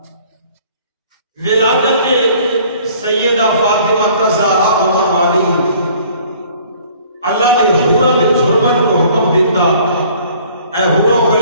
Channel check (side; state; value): both; inverted; correlation -0.54